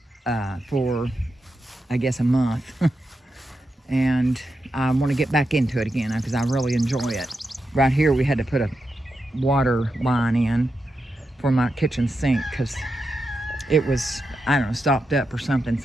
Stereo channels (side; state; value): both; normal; correlation 0.87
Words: for, I guess, a month. And I want to get back into it again because I really enjoy it. Right here we had to put a water line in for my kitchen sink because it was, I don't know, stopped up or something,